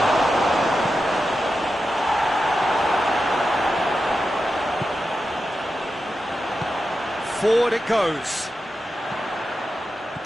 Forward it goes.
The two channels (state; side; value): normal; both; correlation 0.90